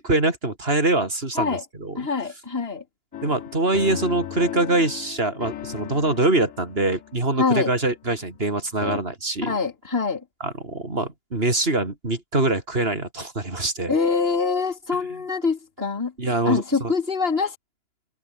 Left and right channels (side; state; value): left; late; 2.9 ms